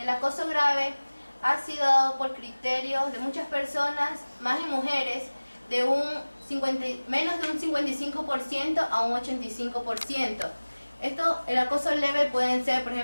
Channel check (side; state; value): both; inverted; correlation -1.00